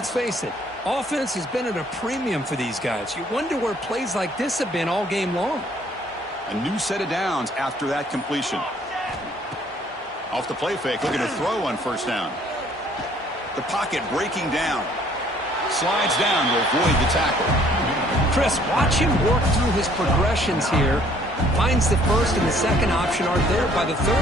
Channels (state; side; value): normal; both; correlation 0.60